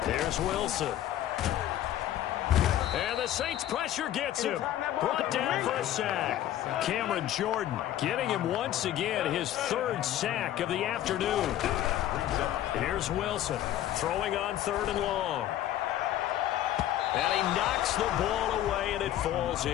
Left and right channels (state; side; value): quieter; right; 12.6 dB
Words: Here's Wilson. And the Saints pressure gets him. Brought down for a sack. Cameron Jordan getting him once again, his 3rd sack of the afternoon. Here's Wilson throwing on 3rd and long. And he knocks the ball away, and it falls